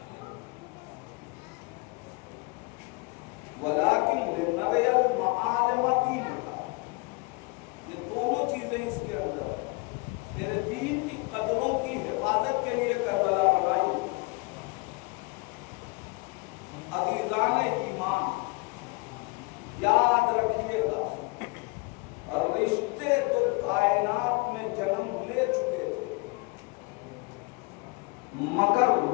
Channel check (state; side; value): quieter; right; 28.0 dB